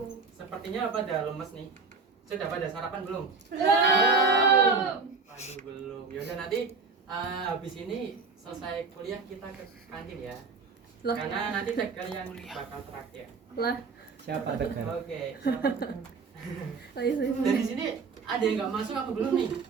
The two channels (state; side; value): quieter; left; 4.5 dB